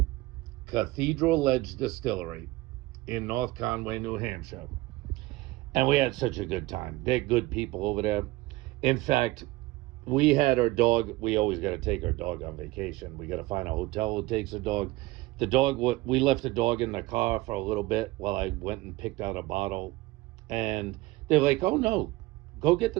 Cathedral Edge Distillery in North Conway, New Hampshire. And we had such a good time. They're good people over there. In fact, we had our dog. We always got to take our dog on vacation. We got to find a hotel who takes a dog. We left the dog in the car for a little bit while I went and picked out a bottle. And they're like, oh no, go get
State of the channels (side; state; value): left; quieter; 19.5 dB